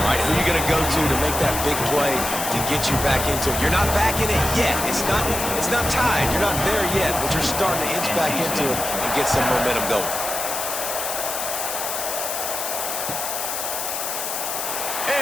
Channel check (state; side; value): noise; left; hiss, 3 dB below the sound